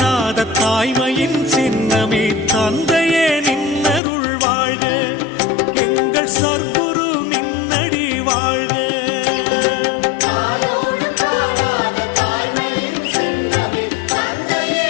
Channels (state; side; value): drops out; right; at 4.0 s